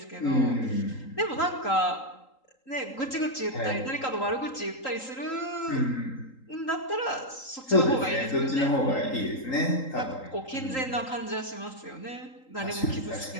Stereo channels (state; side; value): late; right; 3.8 ms